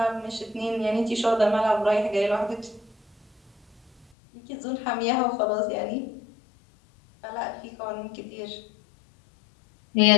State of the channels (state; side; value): drops out; right; at 4.0 s